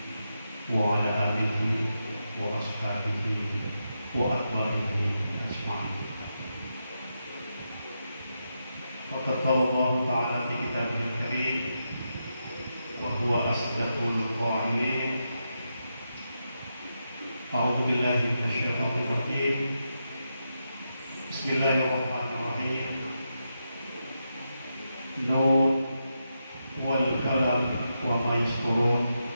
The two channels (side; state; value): both; inverted; correlation -0.86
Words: wa ala alihi wa ashabihi wa atba'ihi ajma'in. Faqad qala Allah Ta'ala fi kitabihil karim wa huwa asdaqul qa'ilin. A'udzu billahi minasyaitonir rajim. Bismillahirrahmanirrahim. Nun wal qalam wa ma yasturun.